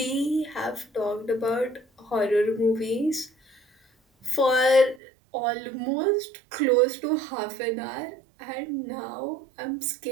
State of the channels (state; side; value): drops out; left; at 5.0 s